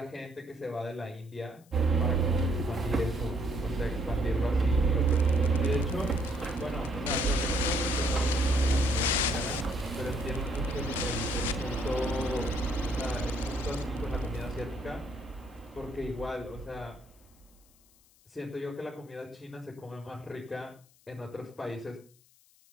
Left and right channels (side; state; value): left; noise; hiss, 30 dB below the sound